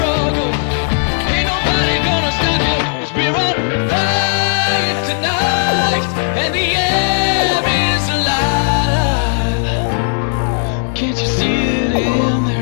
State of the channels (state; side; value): silent; right; digital silence